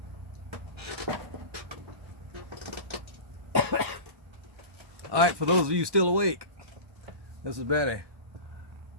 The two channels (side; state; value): left; late; 1.2 ms